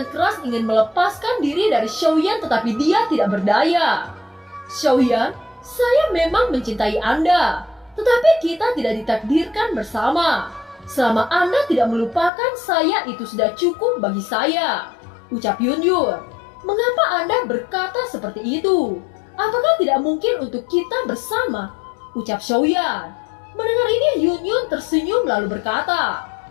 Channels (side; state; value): right; drops out; at 12.3 s